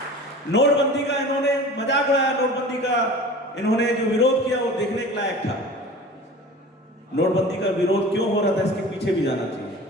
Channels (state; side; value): normal; both; correlation 0.38